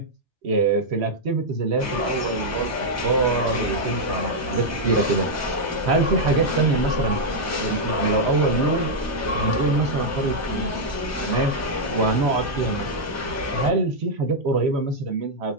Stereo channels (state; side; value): normal; both; correlation -0.03